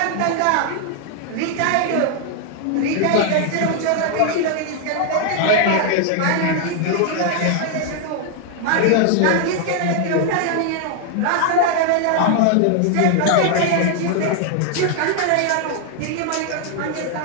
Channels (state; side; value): different; both; correlation 0.00